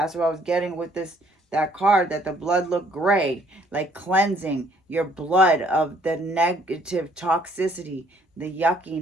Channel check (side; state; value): both; normal; correlation 0.63